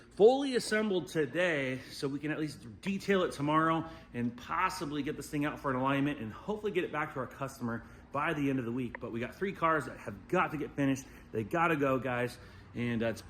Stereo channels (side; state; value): both; identical; correlation 1.00